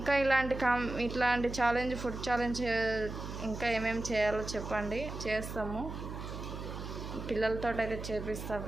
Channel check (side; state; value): right; noise; hum, 8 dB below the sound